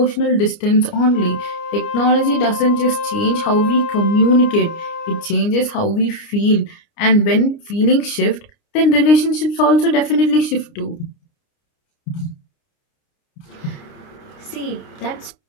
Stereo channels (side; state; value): right; late; 29 ms